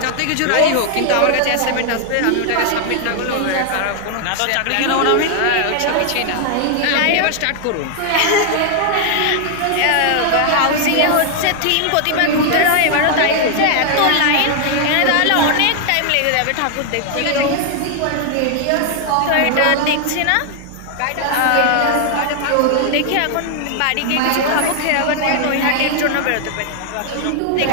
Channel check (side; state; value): both; different; correlation 0.00